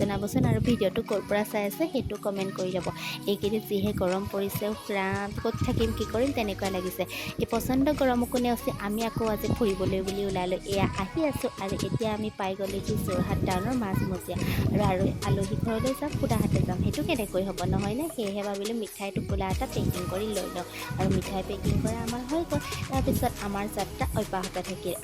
আৰু ভিডিঅ'টো ক'ৰ পৰা চাই আছে সেইটো কমেণ্ট কৰি ল'ব। এইকেইদিন যিহে গৰম পৰিছে, প্ৰাণ ক'ত থাকিম কি কৰিম তেনেকুৱা লাগিছে। এই পচন্দ গৰমকো নেওচি আমি আকৌ আজি ফুৰিবলৈ বুলি ওলালোঁ। এয়া আহি আছোঁ আৰু এতিয়া আমি পাই গ'লোহি যোৰহাট টাউনৰ মাজমজিয়া। আৰু আলহী ঘৰলৈ যাম, সুদাহাতে যাম, সেইটো কেনেকৈ হ'ব নহয়নে? সেয়েহে ভাবিলোঁ মিঠাই টোপোলা এটা পেকিং কৰি লৈ লওঁ। আৰু মিঠাই পেকিং কৰা আমাৰ হৈ গ'ল। তাৰপিছত আমাৰ যাত্ৰা অব্যাহত থাকিল।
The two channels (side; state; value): both; identical; correlation 1.00